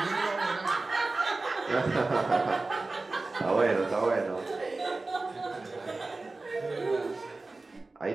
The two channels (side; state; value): left; quieter; 3.4 dB